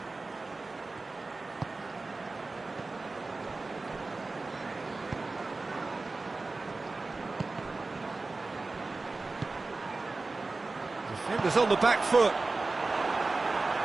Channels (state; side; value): quieter; left; 3.5 dB